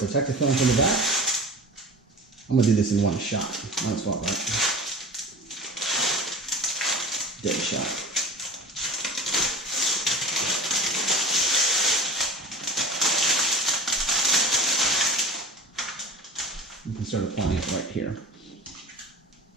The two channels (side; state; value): both; normal; correlation 0.36